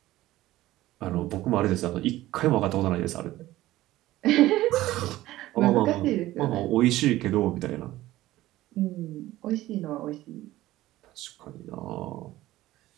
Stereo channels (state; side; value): quieter; left; 16.1 dB